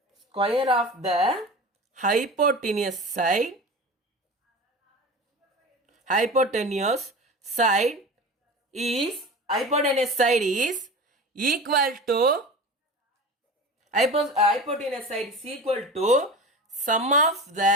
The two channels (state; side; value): normal; both; correlation 0.32